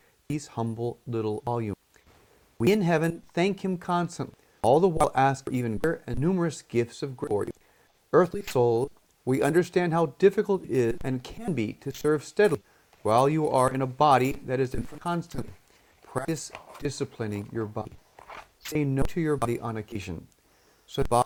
these humble little volumes. We in heaven thank Him constantly, all the while ask for even greater and numerous gifts of grace for you. Earthly souls, we understand how difficult it is and can be to serve steadily while you are in a body that is in constantly. Practice disciplining your body. Say no to your body on occasion, so that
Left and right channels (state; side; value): identical; both; correlation 1.00